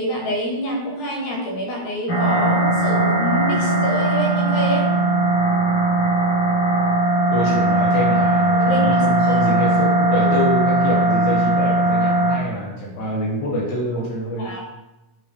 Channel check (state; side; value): late; right; 17 ms